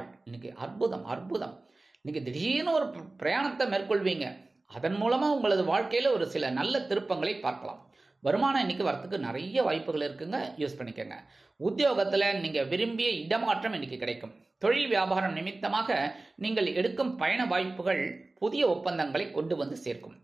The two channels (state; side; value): quieter; left; 3.1 dB